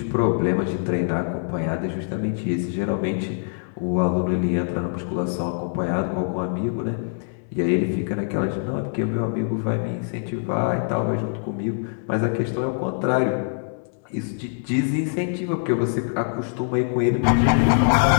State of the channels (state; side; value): silent; right; 63 dB below the other